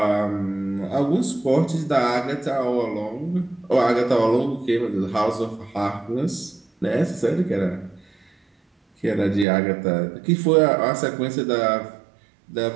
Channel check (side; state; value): left; drops out; at 9.5 s